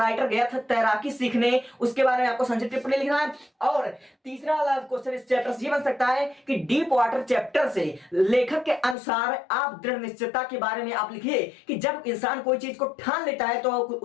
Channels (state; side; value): drops out; right; at 9.0 s